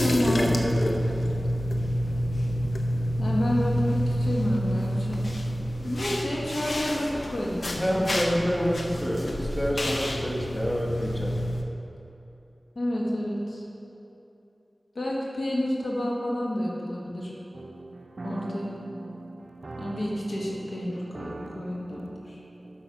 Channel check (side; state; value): both; normal; correlation 0.96